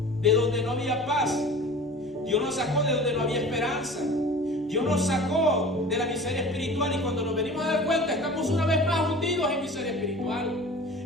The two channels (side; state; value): both; normal; correlation 0.40